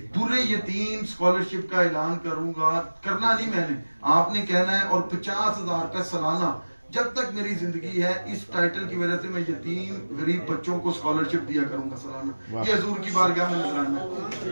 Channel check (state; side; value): inverted; both; correlation -1.00